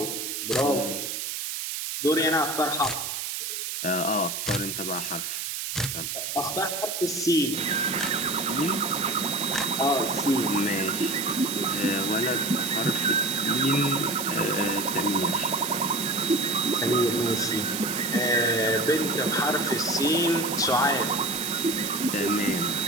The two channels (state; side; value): noise; right; hiss, 4 dB below the sound